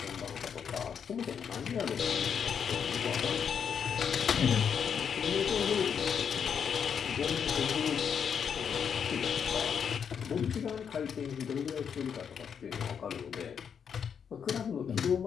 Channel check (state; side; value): quieter; right; 7.3 dB